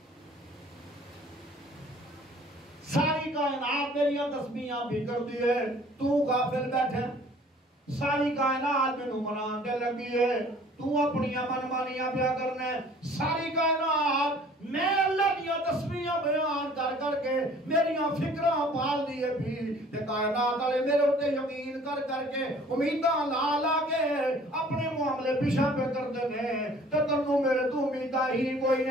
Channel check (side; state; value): both; normal; correlation 0.53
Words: ساری کائنات میریاں تسبیحاں بھی کر دی ہے، تو غافل بیٹھے، ساری کائنات میں منان دے لگی ہے، تو اپنی من مانیاں پیا کرنے، ساری کائنات میں اللہ دیا تسبیحاں بیان کر کر کے میریاں فکرہ پال دیئے بھی، تے کائنات والے میرے ہوتے یقین کر کے امیداں لا لا کے اپنے معاملے پیچھا پہ کرتے ہیں تے تنوں میرے تو امیداں ہی کوئی